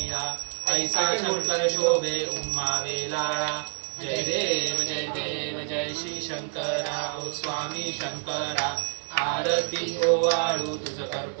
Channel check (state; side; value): silent; left; 58 dB below the other